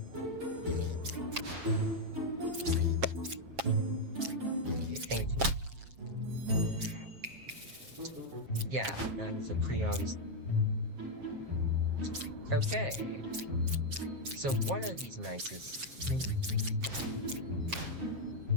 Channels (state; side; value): late; left; 7.4 ms